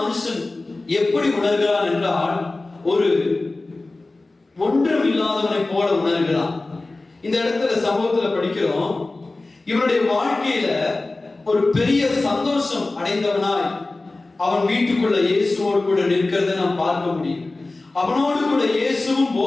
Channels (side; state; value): right; quieter; 3.2 dB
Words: மனுஷன் எப்படி உணர்கிறான் என்றால் ஒரு ஒன்றும் இல்லாதவனை போல உணர்கிறான். இந்த இடத்துல சம்பவத்துல படிக்கிறோம், இவனுடைய வாழ்க்கையில ஒரு பெரிய சந்தோஷம் அடைந்தவனாய் அவன் வீட்டுக்குள்ள இயேசுவோடு கூட நிற்கிறதை நாம் பார்க்க முடியும். அவனோடு கூட இயேசுவும்